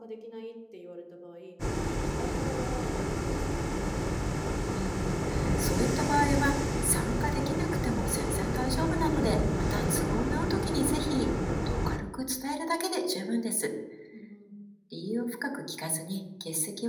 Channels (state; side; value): identical; both; correlation 1.00